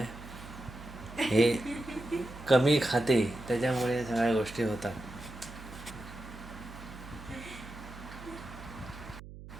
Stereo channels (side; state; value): right; noise; hum, 14 dB below the sound